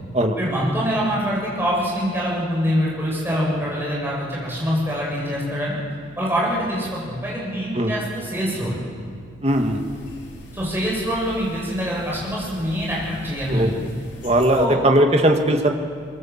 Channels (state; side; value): noise; right; hum, 23 dB below the sound